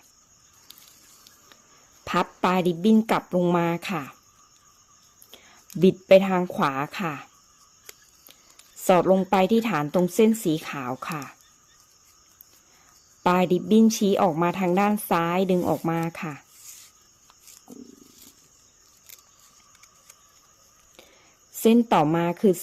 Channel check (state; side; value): identical; both; correlation 1.00